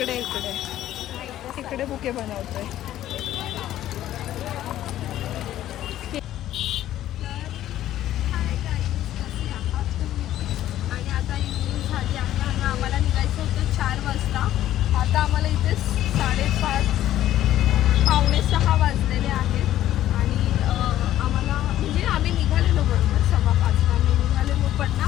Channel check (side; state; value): right; quieter; 12.9 dB